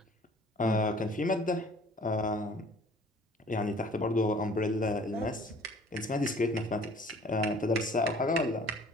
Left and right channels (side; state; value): both; normal; correlation 0.52